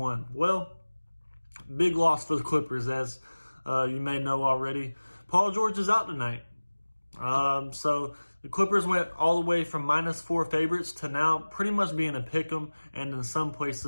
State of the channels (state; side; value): inverted; both; correlation -1.00